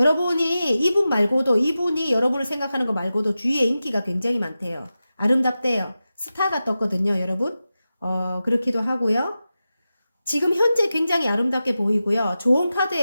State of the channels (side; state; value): both; inverted; correlation -0.93